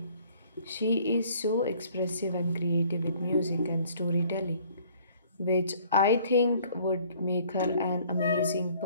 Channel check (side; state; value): both; inverted; correlation -0.57